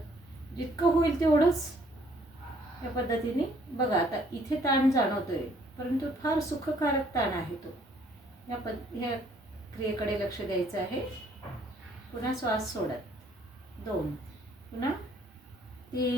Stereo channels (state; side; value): normal; both; correlation 0.63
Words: जितकं होईल तेवढंच या पद्धतीने बघा. आता इथे ताण जाणवतोय, परंतु फार सुखकारक ताण आहे तो. ह्या क्रियेकडे लक्ष द्यायचं आहे. पुन्हा श्वास सोडत 2, पुन्हा